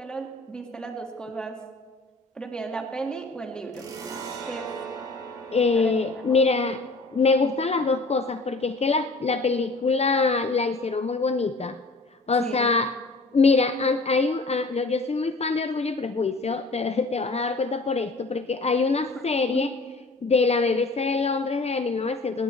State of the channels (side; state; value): right; quieter; 3.3 dB